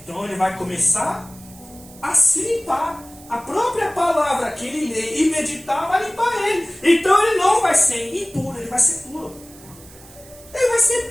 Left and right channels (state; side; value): noise; right; hiss, 22 dB below the sound